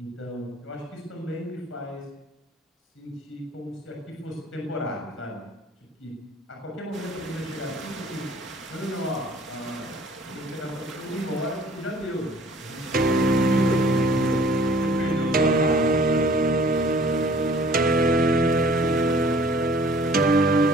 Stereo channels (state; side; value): normal; both; correlation 0.53